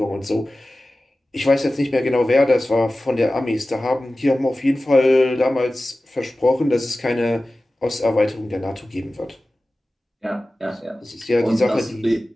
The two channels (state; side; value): normal; both; correlation 0.96